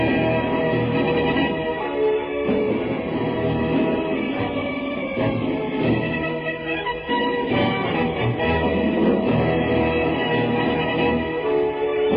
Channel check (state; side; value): identical; both; correlation 1.00